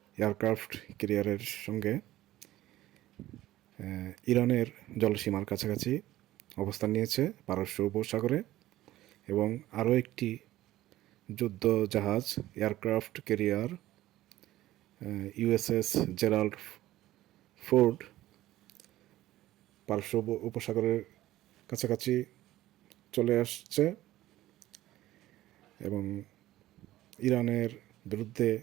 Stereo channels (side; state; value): left; quieter; 15.4 dB